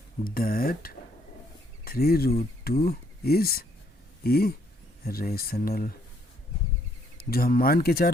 that 3 root 2 is irrational। जो हम मान के चल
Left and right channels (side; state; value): both; normal; correlation 0.68